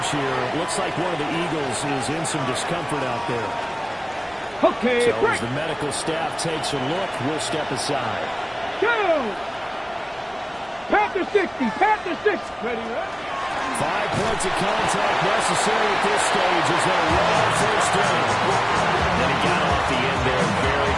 here. Looks like one of the Eagles is in some discomfort out there. Okay, so as the medical staff takes a look, we'll step aside. Go! Panther 60, Panther 6. Ready, right? 5 points of contact necessary at this stage as they run on first down. And he got off the end there very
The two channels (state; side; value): identical; both; correlation 1.00